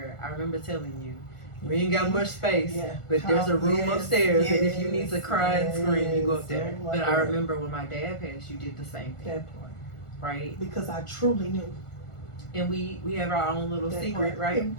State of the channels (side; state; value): right; late; 1.4 ms